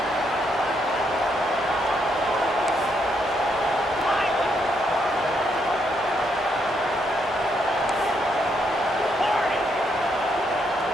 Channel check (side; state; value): both; normal; correlation 0.76